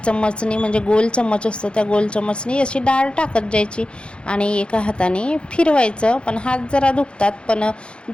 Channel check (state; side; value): late; right; 0.056 ms